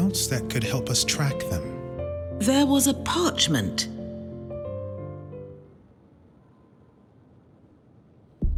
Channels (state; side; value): identical; both; correlation 1.00